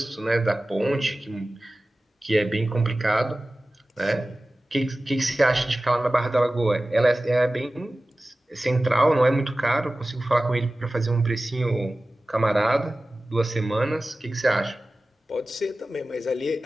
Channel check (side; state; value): both; normal; correlation 0.96